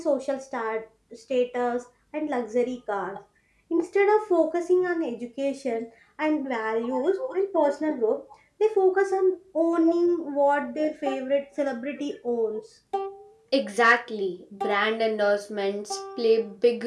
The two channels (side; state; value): both; identical; correlation 1.00